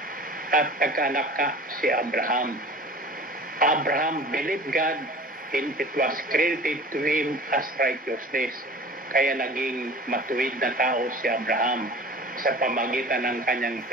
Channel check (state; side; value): normal; both; correlation 0.40